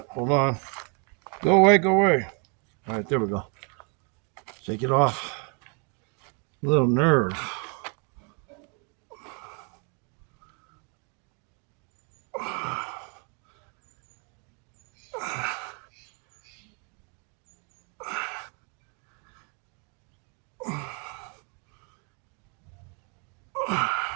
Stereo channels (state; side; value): quieter; left; 36.6 dB